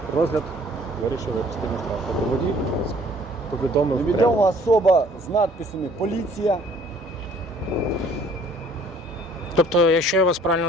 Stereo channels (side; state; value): both; normal; correlation 0.56